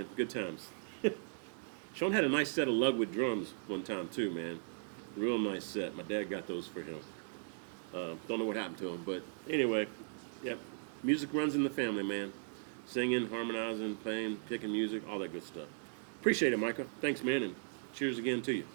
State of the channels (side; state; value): left; silent; digital silence